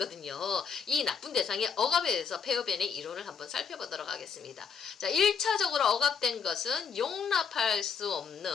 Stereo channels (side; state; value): right; quieter; 6.5 dB